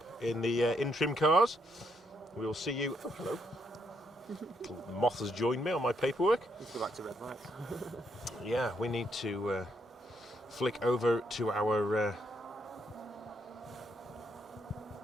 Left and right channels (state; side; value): normal; both; correlation 0.76